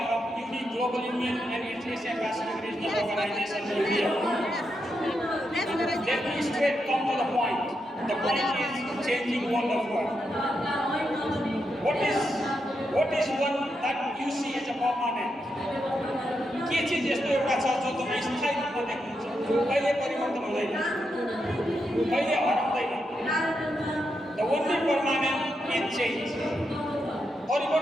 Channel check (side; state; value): both; normal; correlation 0.84